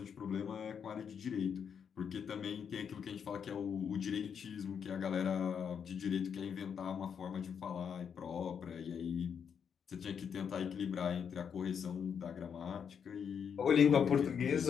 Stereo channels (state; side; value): quieter; right; 7.3 dB